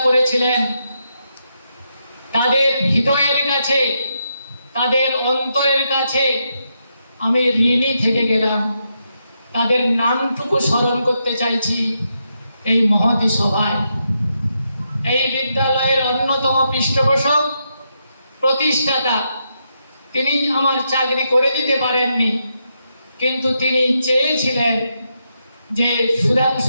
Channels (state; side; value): inverted; both; correlation -0.82